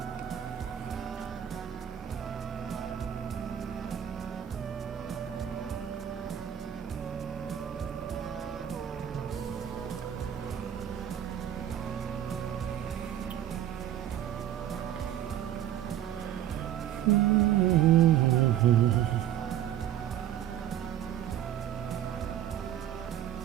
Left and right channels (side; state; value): left; quieter; 10.9 dB